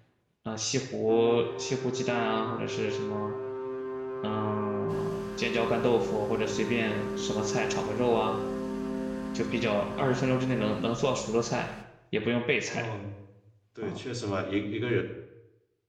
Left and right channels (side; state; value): both; identical; correlation 1.00